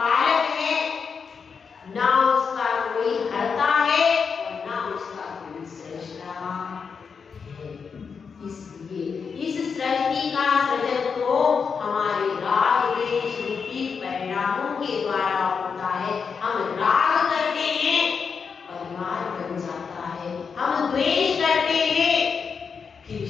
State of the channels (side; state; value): right; quieter; 5.9 dB